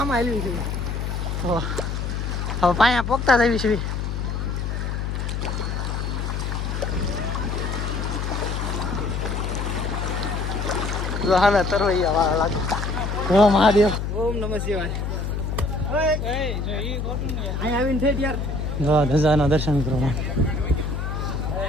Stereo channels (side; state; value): left; noise; hum, 2 dB below the sound